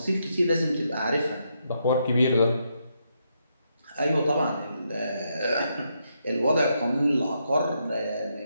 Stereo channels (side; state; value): both; inverted; correlation -0.79